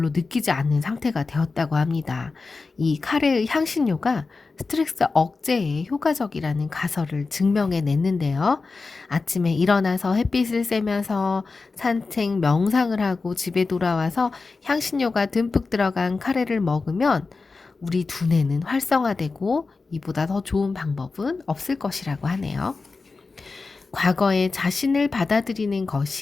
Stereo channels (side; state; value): right; quieter; 4.1 dB